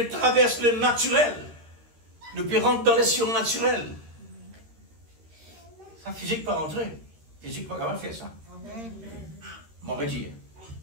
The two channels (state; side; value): late; left; 13 ms